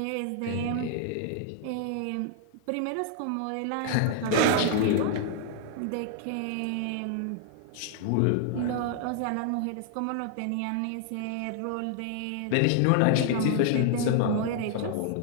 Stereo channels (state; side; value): different; both; correlation 0.00